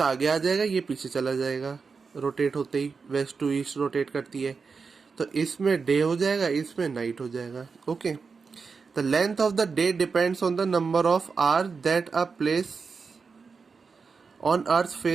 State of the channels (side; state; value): left; quieter; 5.0 dB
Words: आगे आ जाएगा, ये पीछे चला जाएगा। रोटेट होते ही वेस्ट टू ईस्ट रोटेट करती है, तो इसमें डे हो जाएगा, इसमें नाइट हो जाएगा। Okay. The length of the day depends on the number of hours that a place on earth